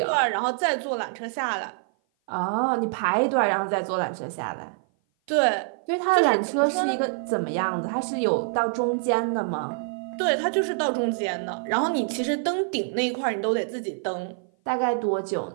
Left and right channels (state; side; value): silent; left; 56 dB below the other